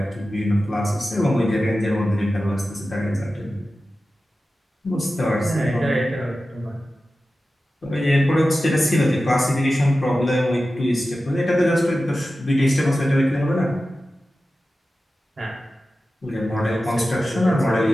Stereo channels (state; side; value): normal; both; correlation 0.94